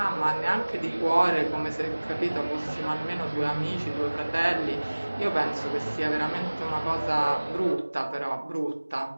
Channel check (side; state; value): both; inverted; correlation -1.00